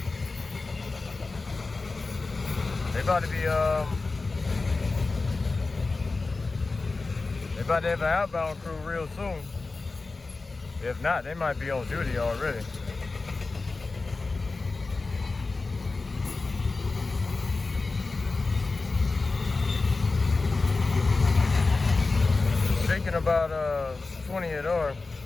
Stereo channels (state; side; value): quieter; right; 3.7 dB